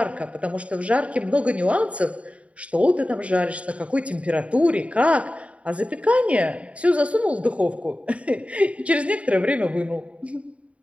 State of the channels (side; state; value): left; late; 0.064 ms